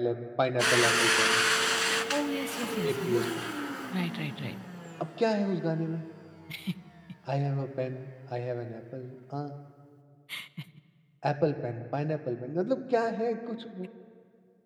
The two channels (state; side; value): identical; both; correlation 1.00